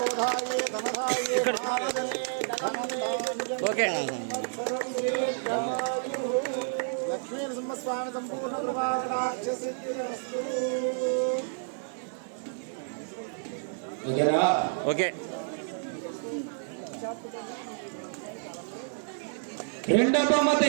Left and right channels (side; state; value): left; silent; digital silence